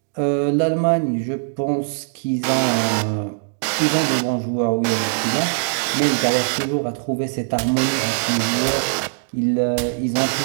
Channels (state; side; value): silent; left; digital silence